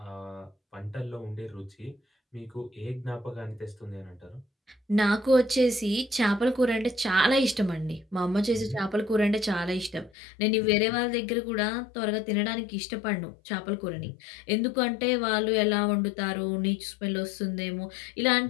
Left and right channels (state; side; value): drops out; right; at 10.1 s